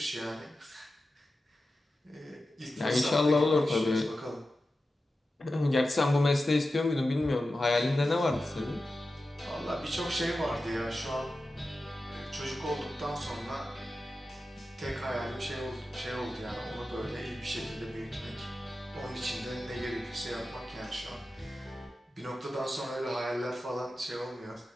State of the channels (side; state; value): both; normal; correlation 0.93